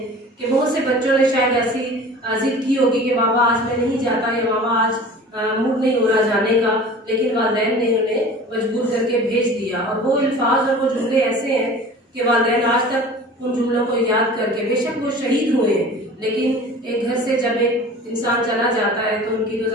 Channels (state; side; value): normal; both; correlation 0.41